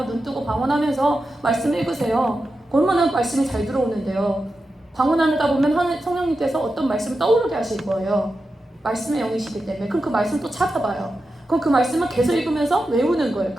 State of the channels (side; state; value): both; normal; correlation 0.90